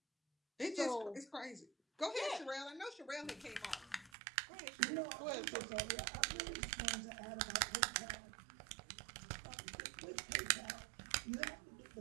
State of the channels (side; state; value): left; drops out; at 4.1 s